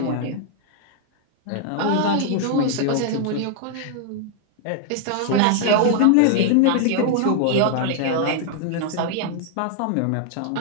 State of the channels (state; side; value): different; both; correlation 0.00